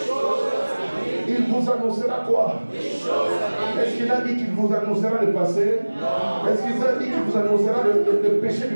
Il vous annoncera quoi? Est-ce qu'il a dit qu'il vous annoncera le passé? Est-ce qu'il a dit qu'il vous annoncera le péché du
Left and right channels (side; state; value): both; inverted; correlation -1.00